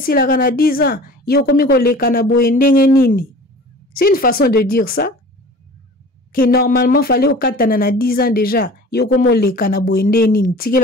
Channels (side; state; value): both; normal; correlation 0.41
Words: la kana 10 ans. Yo komiko le kana boye ndenge nini. C'est une façon de dire ça. Que normalement fallait au katana na 10 ans déjà. Yo komo le kana boye ndenge nini.